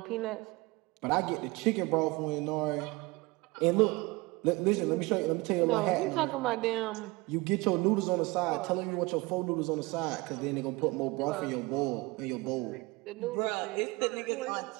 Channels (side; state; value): left; quieter; 23.8 dB